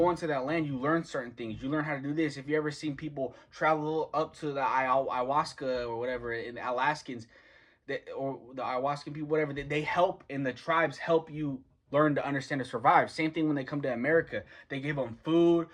into that land, you learn certain things. You learn how to do this. If you ever seen people travel up to the ayahuasca or whatever, in the Alaskans, or the ayahuascan people, whatever, they help, and the tribes help you learn to understand to survive. Same thing when they come to America. They give them food.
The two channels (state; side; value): identical; both; correlation 1.00